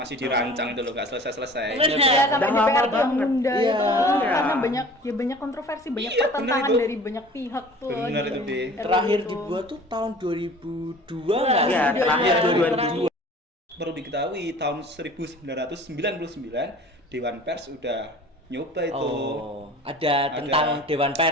dirancang itu loh, nggak selesai-selesai. Benar. Ya sampai Udah lama DPR yang banget. nunda Iya. itu Iya. karena banyak kontroversi, banyak Iya, pertentangan bener itu. dari banyak pihak tuh. Bener di itu, Deh. RUU Terakhir itu. dibuat tuh tahun 2002 nggak sih? Iya, terakhir 2002. Perlu diketahui tahun 1999 Dewan Pers udah nyoba itu. Oh, ada tentang Dewan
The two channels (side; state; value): both; normal; correlation 0.45